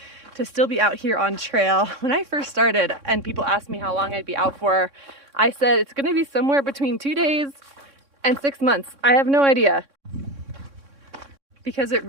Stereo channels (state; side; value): late; left; 3.6 ms